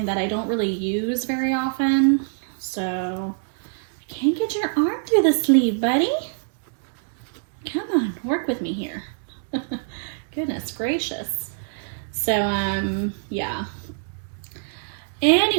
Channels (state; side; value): silent; left; digital silence